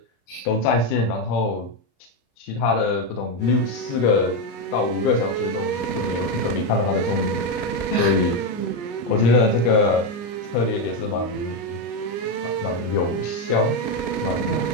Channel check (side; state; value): right; late; 34 ms